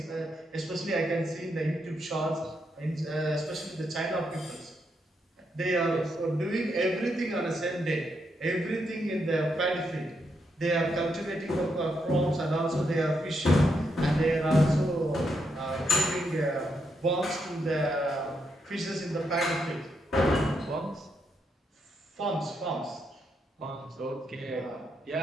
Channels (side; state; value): both; normal; correlation 0.80